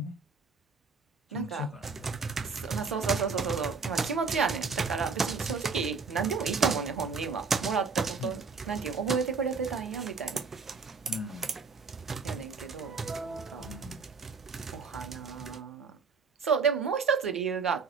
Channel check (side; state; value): left; quieter; 4.9 dB